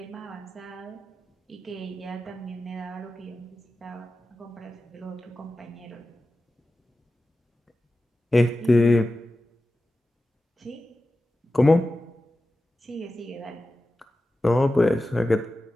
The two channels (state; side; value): normal; both; correlation 0.94